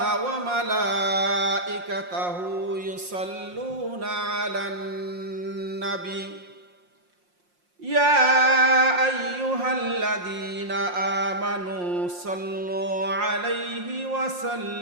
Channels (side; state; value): left; late; 5.6 ms